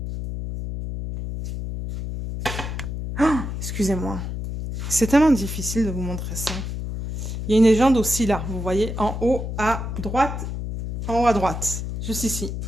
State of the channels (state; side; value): noise; left; hum, 5 dB below the sound